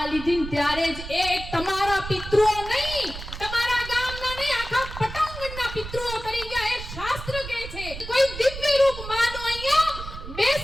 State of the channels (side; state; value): right; noise; rumble, 10 dB below the sound